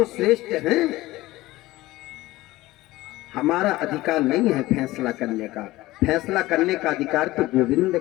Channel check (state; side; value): quieter; right; 18.1 dB